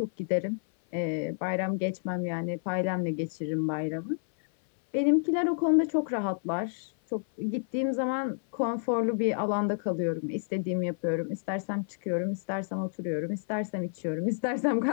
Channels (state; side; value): silent; right; 58 dB below the other